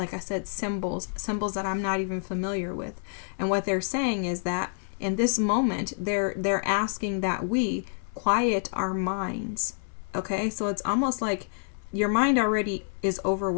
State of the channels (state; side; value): silent; right; 59 dB below the other